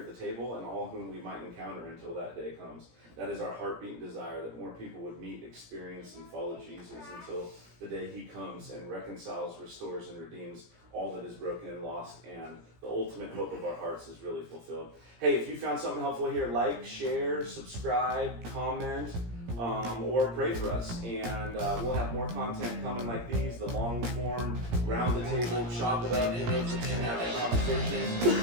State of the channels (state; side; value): late; left; 17 ms